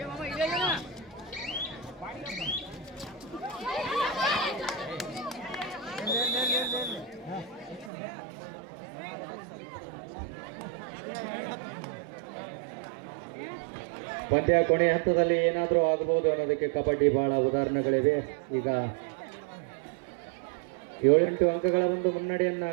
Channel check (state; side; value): drops out; left; at 7.9 s